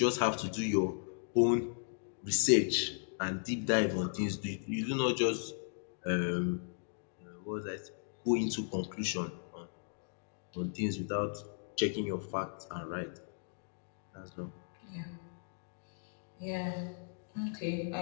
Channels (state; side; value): silent; right; digital silence